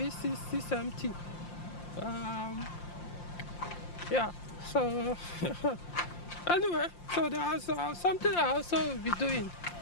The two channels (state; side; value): late; right; 5.7 ms